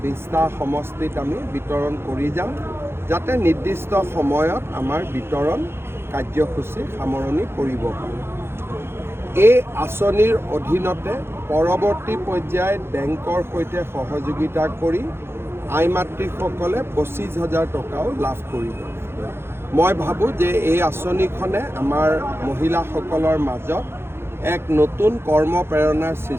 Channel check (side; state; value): left; late; 0.12 ms